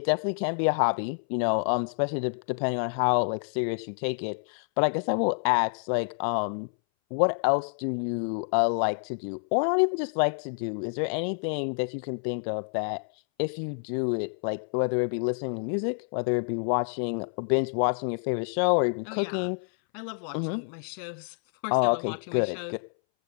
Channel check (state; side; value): silent; right; 59 dB below the other